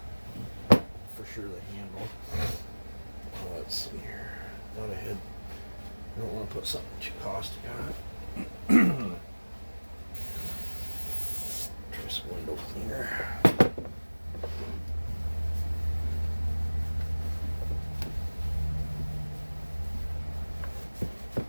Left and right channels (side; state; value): both; inverted; correlation -1.00